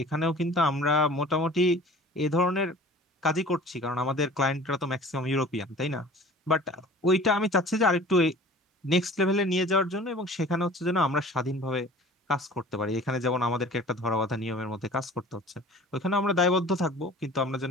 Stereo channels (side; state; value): both; normal; correlation 0.45